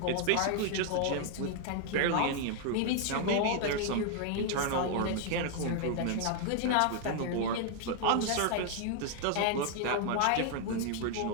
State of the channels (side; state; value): both; different; correlation 0.00